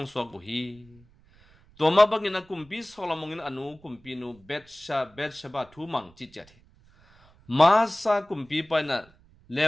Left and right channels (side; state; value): right; noise; rumble, 28 dB below the sound